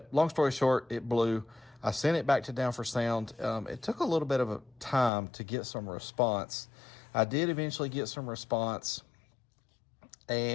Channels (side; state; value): right; drops out; at 5.1 s